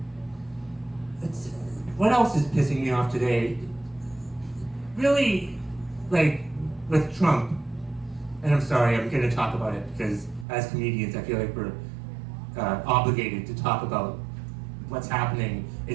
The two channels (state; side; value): drops out; left; at 10.5 s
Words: What else is pissing me off today? Really, like with Trump, and I'm sorry, I'm going to talk about it because as comedians, I feel like we're obligated to talk about what's happening